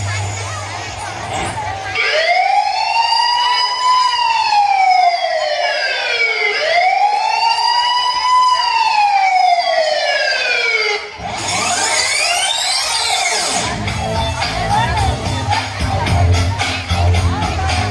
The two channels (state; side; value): identical; both; correlation 1.00